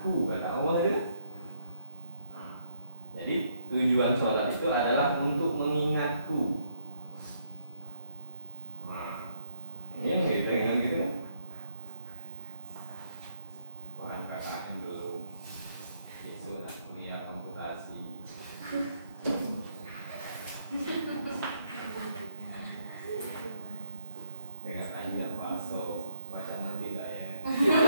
kata Allah itu. Jadi tujuan sholat itu adalah untuk mengingatku. Ini gitu kan gitu kan? KKN belum, besok nak kuliah komputasi. Dengan tanya paso baca mandi tak ya?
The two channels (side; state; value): both; inverted; correlation -0.74